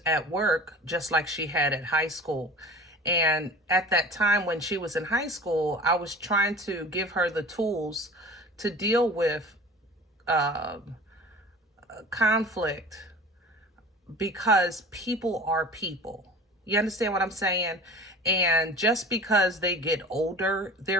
at work just like she had at high school. And at that time when she was in high school, I was trying to give her the tools to deal with conflict, because people are people. You understand what I'm saying? And just because they get older,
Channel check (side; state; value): both; normal; correlation 0.40